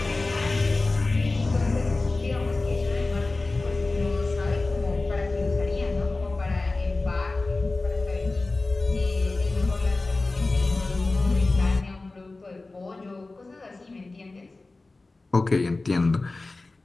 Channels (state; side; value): quieter; right; 3.3 dB